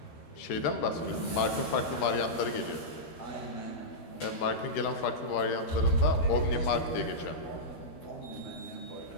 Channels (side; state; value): right; late; 13 ms